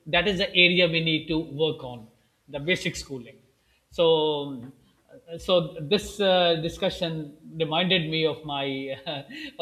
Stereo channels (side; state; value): both; identical; correlation 1.00